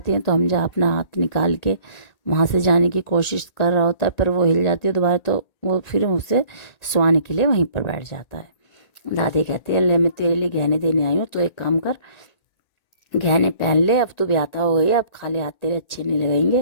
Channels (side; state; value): right; late; 1.8 ms